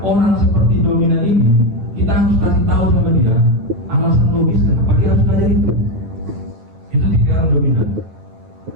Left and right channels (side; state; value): left; late; 9.1 ms